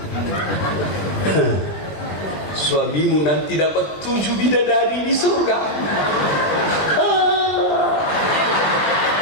suamimu nanti dapat 7 bidadari di surga.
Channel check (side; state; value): right; late; 20 ms